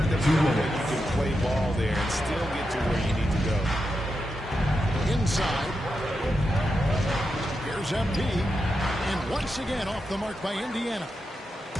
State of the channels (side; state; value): both; normal; correlation 0.87